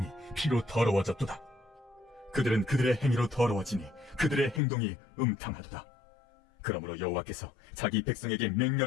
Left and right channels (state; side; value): drops out; right; at 4.6 s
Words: 피로 더러워졌도다. 그들은 그들의 행위로 더러워지니 그들의 행동이 음탕하도다. 그러므로 여호와께서 자기 백성에게